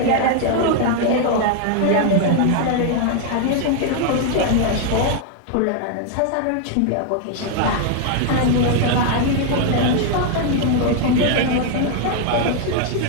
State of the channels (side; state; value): both; different; correlation 0.00